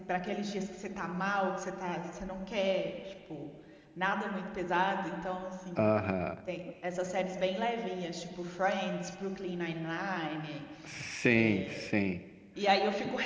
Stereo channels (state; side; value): identical; both; correlation 1.00